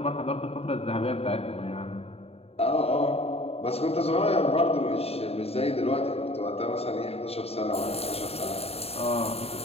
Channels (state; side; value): late; right; 0.29 ms